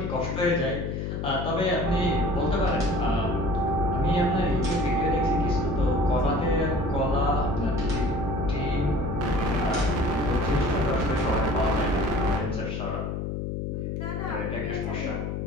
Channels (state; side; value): noise; left; hum, 3 dB below the sound